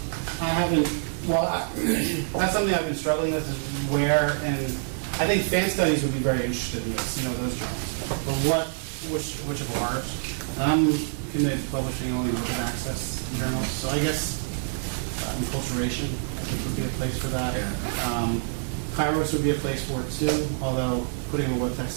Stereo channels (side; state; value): left; silent; digital silence